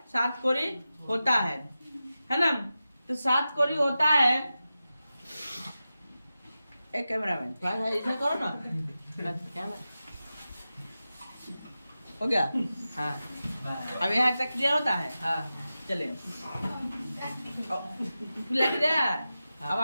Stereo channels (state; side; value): inverted; both; correlation -0.93